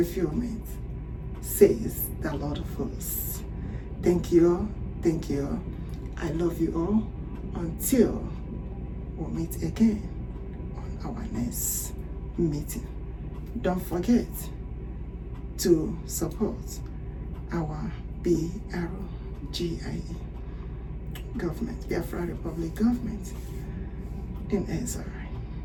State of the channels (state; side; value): identical; both; correlation 1.00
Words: says the Lord of hosts. Thank you all. Thank you all. I love you all. Until we meet again on our next meeting. Don't forget to support our BRGIE government, Biafra Republic government in Israel.